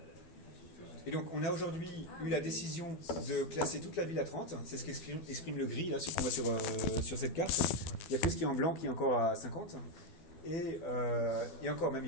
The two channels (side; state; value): right; late; 12 ms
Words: Et donc, on a aujourd'hui eu la décision de classer toute la ville à 30. C'est ce qu'exprime le gris, là, ce qu'on voit sur cette carte. Il n'y a que ce qui est en blanc qui est encore à 50. Et encore, même,